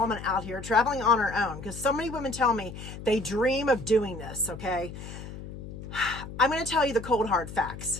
out here traveling on her own? Because so many women tell me they dream of doing this, okay? I'm going to tell you the cold hard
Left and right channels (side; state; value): left; noise; hum, 11 dB below the sound